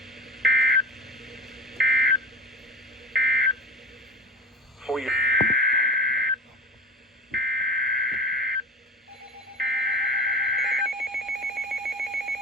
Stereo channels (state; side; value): normal; both; correlation 0.31